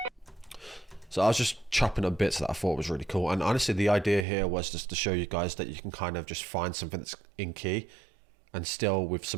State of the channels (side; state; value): left; drops out; at 4.2 s